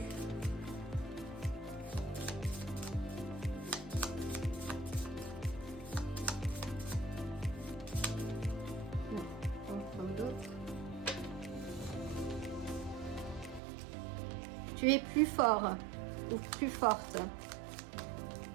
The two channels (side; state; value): left; drops out; at 13.6 s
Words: Tu es plus fort ou plus forte.